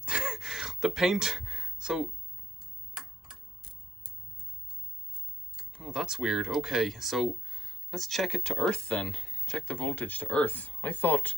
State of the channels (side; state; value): both; normal; correlation 0.76